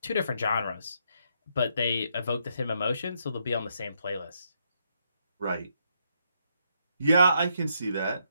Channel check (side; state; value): both; inverted; correlation -0.76